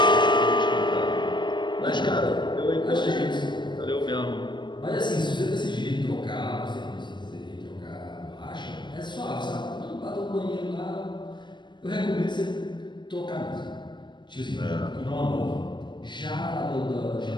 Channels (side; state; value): right; late; 0.22 ms